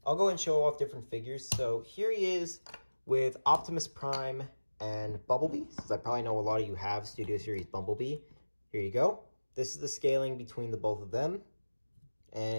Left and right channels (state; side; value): inverted; both; correlation -1.00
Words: go and show off different figures. So here he is with Optimus Prime and Bumblebee, since I probably know a lot of you have Studio Series Bumblebee. Here you go. This is the scaling between the both of them.